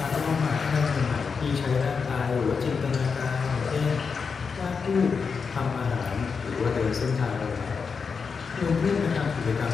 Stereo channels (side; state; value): right; quieter; 5.5 dB